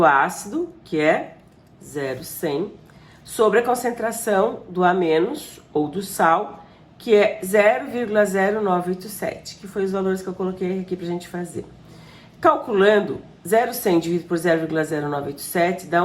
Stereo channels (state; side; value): identical; both; correlation 1.00